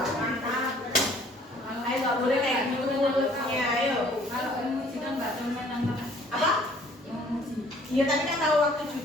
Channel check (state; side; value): normal; both; correlation 0.57